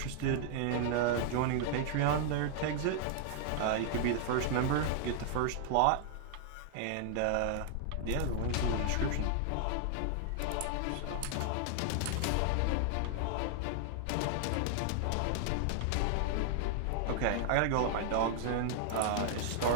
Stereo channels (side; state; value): both; different; correlation 0.00